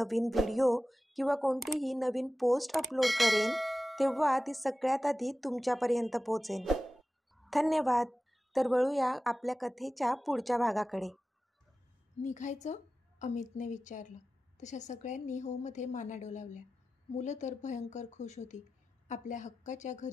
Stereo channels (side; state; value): both; normal; correlation 0.95